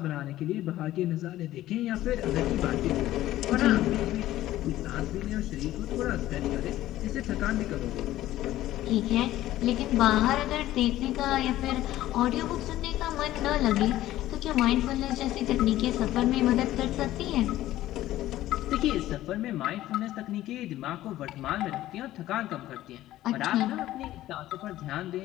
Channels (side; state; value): right; quieter; 14.7 dB